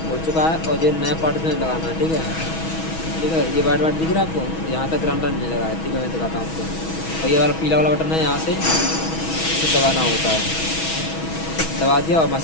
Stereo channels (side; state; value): right; late; 6.2 ms